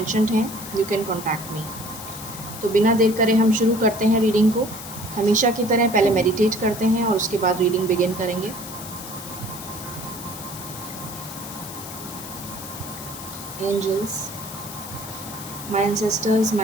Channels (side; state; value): left; noise; hiss, 12 dB below the sound